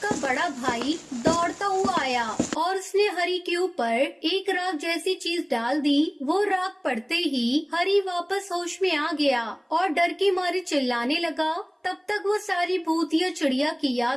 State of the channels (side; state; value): both; identical; correlation 1.00